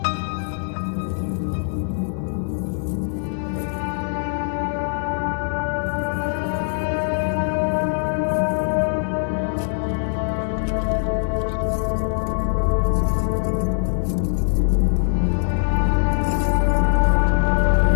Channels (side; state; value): right; silent; 64 dB below the other